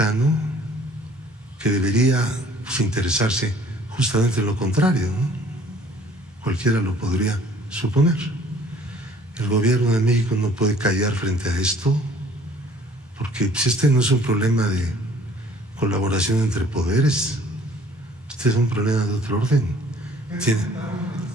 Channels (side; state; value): both; normal; correlation 0.55